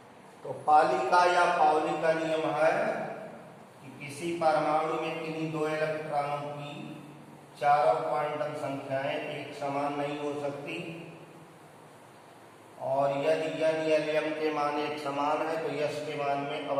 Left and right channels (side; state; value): both; identical; correlation 1.00